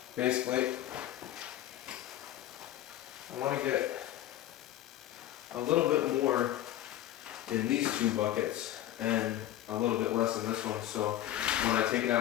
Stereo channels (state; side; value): quieter; right; 13.2 dB